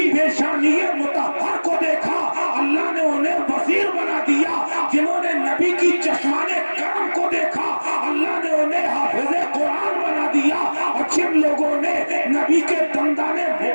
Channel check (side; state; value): both; inverted; correlation -1.00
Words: पेशानिये मुतहर को देखा, अल्लाह ने उन्हें वजीर बना दिया। जिन्होंने नबी की चश्माने करम को देखा, अल्लाह ने उन्हें हाफिज़े कुरान बना दिया। और जिन लोगों ने नबी के दंदाने